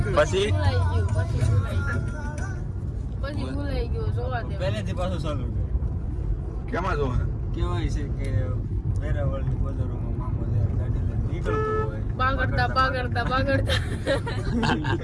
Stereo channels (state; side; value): identical; both; correlation 1.00